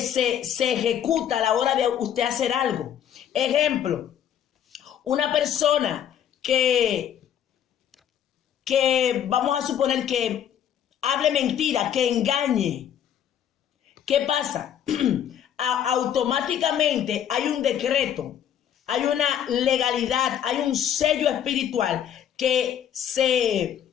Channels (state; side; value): quieter; right; 9.7 dB